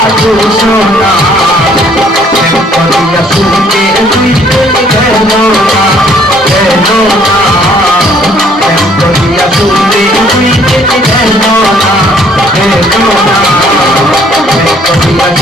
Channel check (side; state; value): both; normal; correlation 0.62